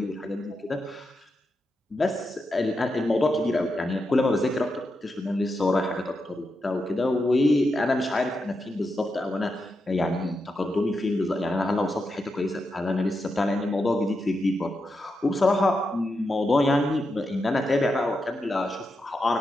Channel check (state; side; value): normal; both; correlation 0.86